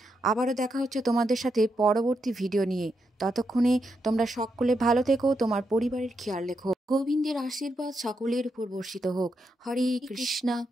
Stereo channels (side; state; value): both; normal; correlation 0.83